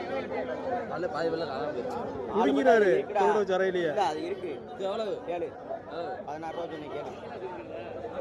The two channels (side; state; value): both; identical; correlation 1.00